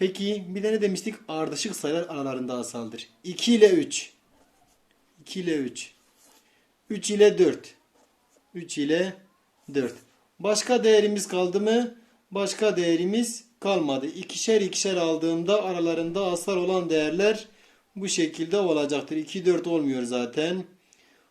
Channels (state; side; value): identical; both; correlation 1.00